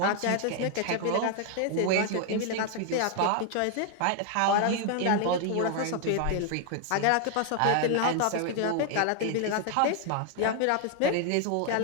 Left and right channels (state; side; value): different; both; correlation 0.00